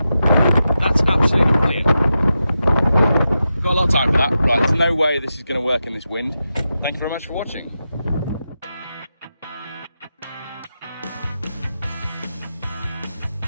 that's absolutely brilliant. Got a lot of time for that. Right, there's no way this is going to work in this wind. Thank you very much for watching.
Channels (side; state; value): both; inverted; correlation -0.89